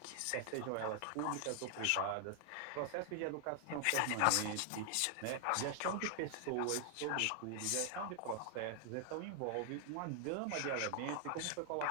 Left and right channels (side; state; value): both; different; correlation 0.00